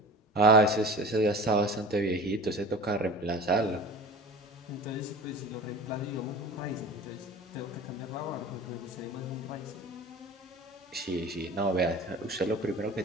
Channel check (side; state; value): both; normal; correlation 0.36